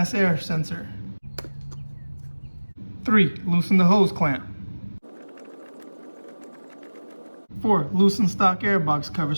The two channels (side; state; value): both; inverted; correlation -1.00